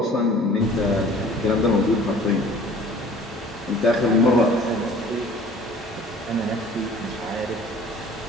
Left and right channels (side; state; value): both; normal; correlation 0.49